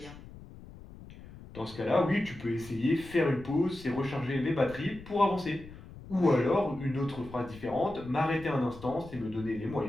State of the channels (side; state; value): left; noise; rumble, 17 dB below the sound